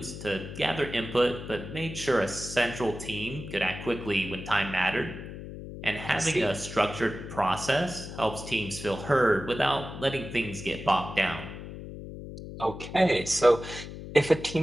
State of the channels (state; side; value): noise; left; hum, 11 dB below the sound